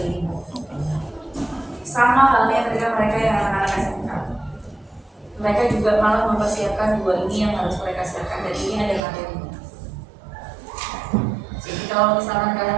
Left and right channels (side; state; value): left; drops out; at 9.0 s